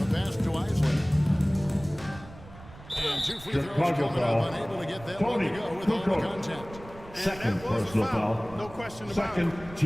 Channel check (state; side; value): noise; right; rumble, 18 dB below the sound